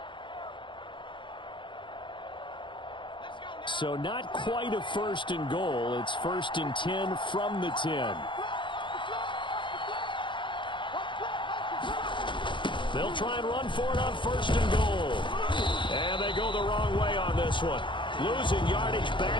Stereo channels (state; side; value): late; right; 0.23 ms